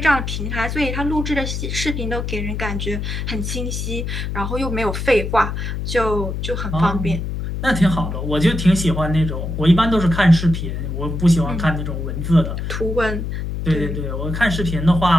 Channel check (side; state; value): left; noise; hum, 4 dB below the sound